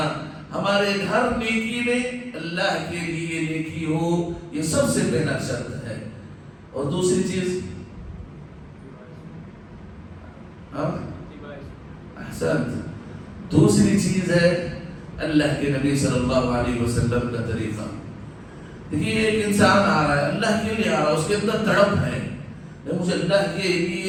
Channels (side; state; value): both; identical; correlation 1.00